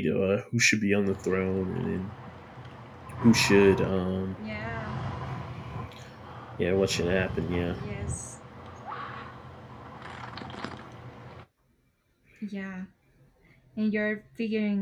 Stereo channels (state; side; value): identical; both; correlation 1.00